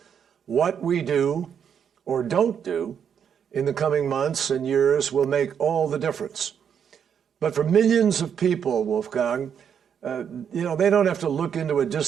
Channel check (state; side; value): quieter; left; 7.9 dB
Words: What we do or don't do in the coming months and years will make all the difference. But for millions of people, Wolfgang, they don't have to look into a